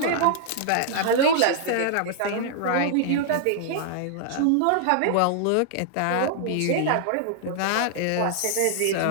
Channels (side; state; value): both; different; correlation -0.01